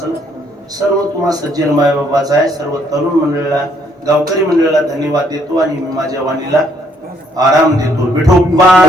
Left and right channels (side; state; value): both; normal; correlation 0.68